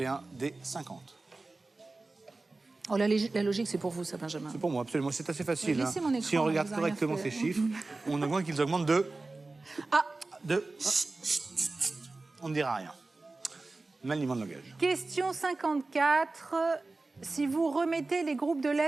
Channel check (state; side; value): quieter; left; 3.4 dB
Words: D, 50. Oh, la logique, c'est pour vous, ça, Benjamin. C'est pour moi, absolument. C'est assez facile. Mais laissez mon écran, Si on regarde vous avez rien correctement fait. ces chiffres, on voit qu'ils augmentent de... Ah. On ne dira rien. Maniement de langage. Question 54. Si vous remettez les groupes de